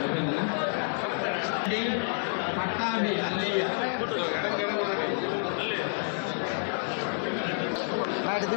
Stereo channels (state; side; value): silent; right; digital silence